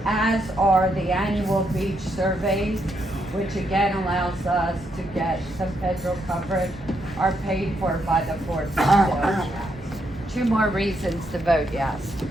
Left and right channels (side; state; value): both; normal; correlation 0.78